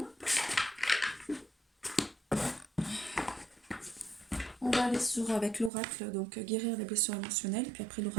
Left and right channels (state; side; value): drops out; left; at 5.7 s